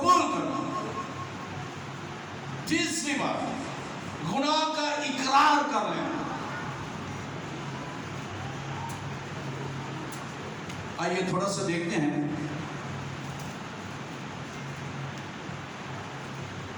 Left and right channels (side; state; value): both; identical; correlation 1.00